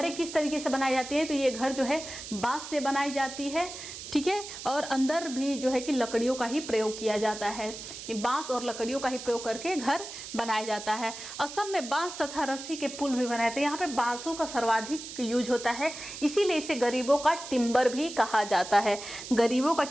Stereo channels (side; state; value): right; noise; hiss, 11 dB below the sound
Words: किस तरीके से बनाई जाती है, तो ये घर जो है बांस से बनाई जाती है, ठीक है, और अंदर भी जो है कि लकड़ियों का ही प्रयोग किया जाता है। ये बांस और लकड़ियों का ही प्रयोग करके घर बनाया जाता है। असम में बांस तथा रस्सी के पुल भी बनाए थे। यहाँ पे बांसों का सर्वाधिक यूज होता है, इसीलिए इसे गरीबों का टिम्बर भी कहा जाता है। गरीबों का